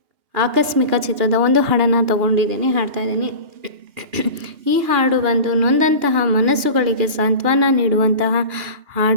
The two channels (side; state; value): left; late; 2.8 ms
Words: ಆಕಸ್ಮಿಕ ಚಿತ್ರದ ಒಂದು ಹಾಡನ್ನು ತಗೊಂಡಿದ್ದೀನಿ, ಹಾಡ್ತಾಯಿದ್ದೀನಿ. ಈ ಹಾಡು ಬಂದು ನೊಂದಂತಹ ಮನಸ್ಸುಗಳಿಗೆ ಸಾಂತ್ವನ ನೀಡುವಂತಹ